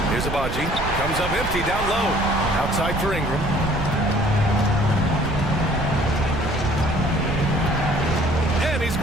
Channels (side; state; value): right; noise; rumble, 6 dB below the sound